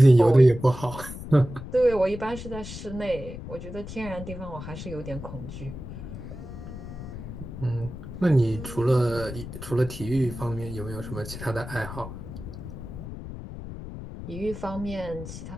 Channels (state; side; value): noise; left; rumble, 10 dB below the sound